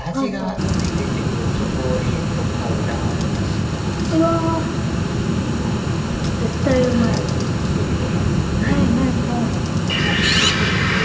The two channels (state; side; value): identical; both; correlation 1.00